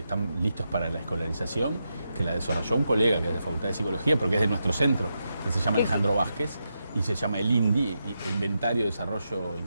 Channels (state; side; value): inverted; both; correlation -0.86